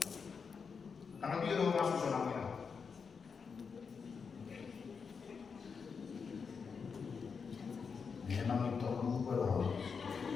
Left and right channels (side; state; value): right; quieter; 5.7 dB